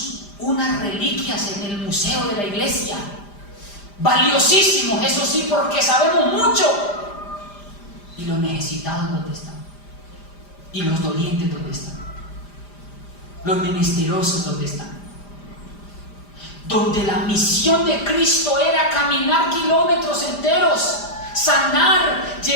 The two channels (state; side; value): late; right; 5.0 ms